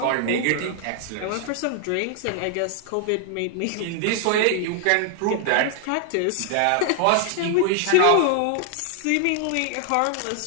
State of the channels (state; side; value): different; both; correlation 0.00